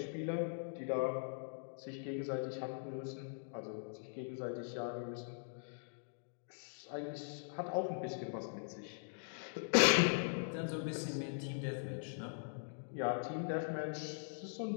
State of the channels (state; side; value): silent; right; digital silence